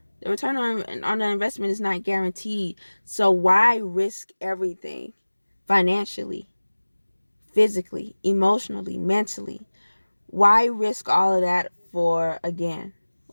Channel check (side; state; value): both; inverted; correlation -1.00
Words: the return on the investment is not guaranteed. So why risk everything financially, physically, emotionally, mentally? Why risk all of that for, again,